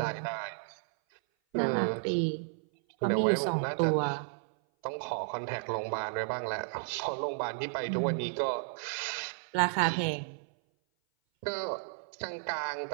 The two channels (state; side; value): silent; left; 56 dB below the other